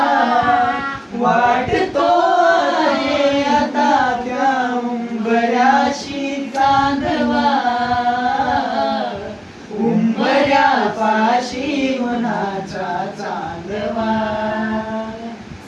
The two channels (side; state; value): both; identical; correlation 1.00